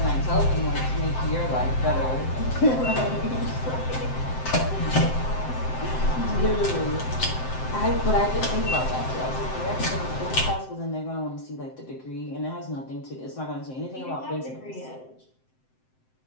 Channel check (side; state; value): right; late; 7.7 ms